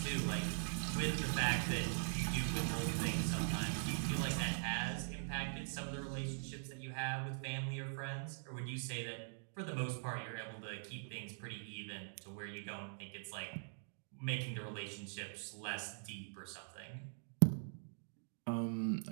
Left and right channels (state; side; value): silent; left; digital silence